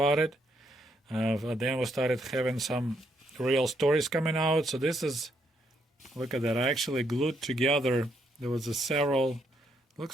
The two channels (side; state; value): both; normal; correlation 0.75